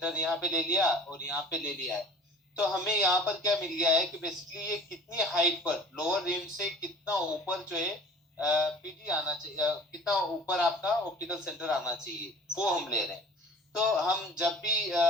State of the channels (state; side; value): normal; both; correlation 0.45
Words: यहाँ पे ले लिया और यहाँ पे ले लिया है, तो हमें यहाँ पर क्या मिल गया है कि बेसिकली ये कितनी हाइट पर लोअर रिम से कितना ऊपर जो है पीडी आना चाहिए, कितना ऊपर आपका ऑप्टिकल सेंटर आना चाहिए वो हम ले रहे हैं। तो हम जब भी